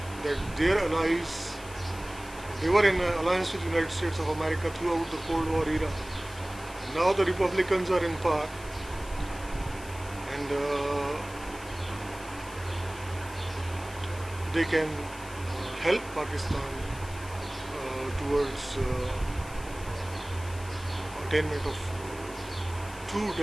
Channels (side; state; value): left; noise; hiss, 17 dB below the sound